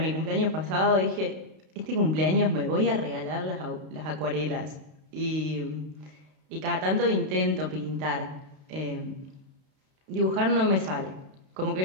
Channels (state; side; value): late; left; 32 ms